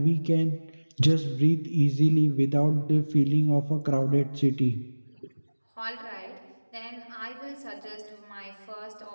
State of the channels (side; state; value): both; inverted; correlation -1.00